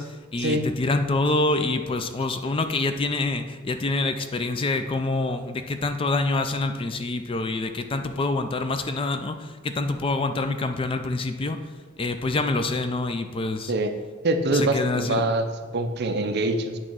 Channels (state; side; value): normal; both; correlation 0.42